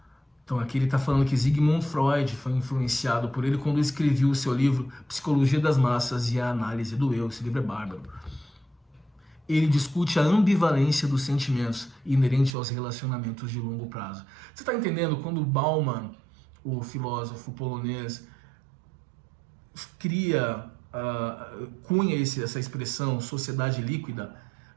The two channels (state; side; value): drops out; left; at 12.6 s